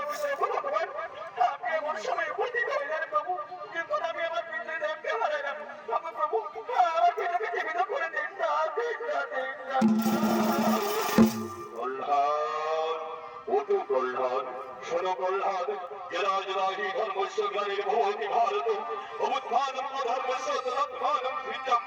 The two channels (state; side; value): identical; both; correlation 1.00